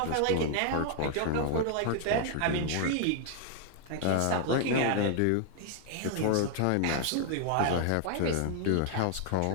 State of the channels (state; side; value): different; both; correlation 0.00